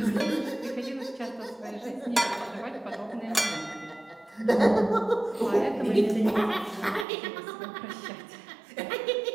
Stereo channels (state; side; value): drops out; left; at 7.1 s